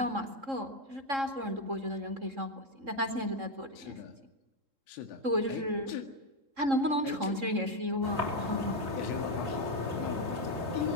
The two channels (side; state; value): left; late; 3.7 ms